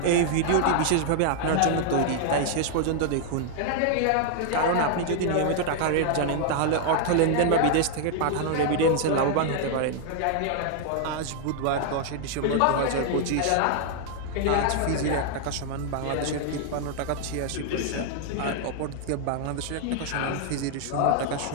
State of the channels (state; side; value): different; both; correlation 0.00